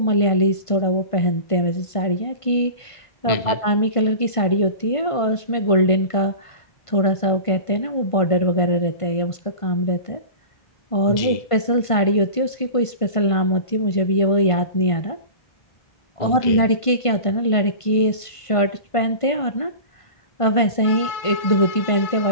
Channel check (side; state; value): right; late; 1.5 ms